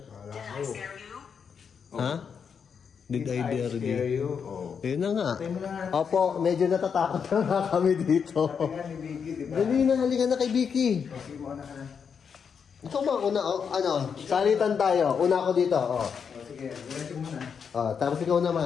Ha? Did I dare you? Oh. Yun na nga. Tayo mo na nga. Opo, medyo natatakot na nga kami dito. Sabi nga ni Vicky, diba? Dali na, halika na kay Vicky. Sige, mauna ka na. Ikaw ba una, ano, salitan tayo. Una ako dito, Sige, diretso muna. tapos ikaw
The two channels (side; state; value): right; quieter; 6.7 dB